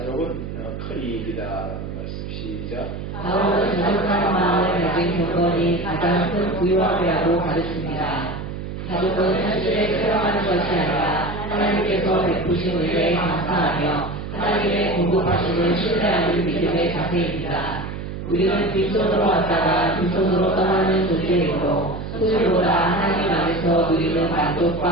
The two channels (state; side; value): noise; right; hum, 7 dB below the sound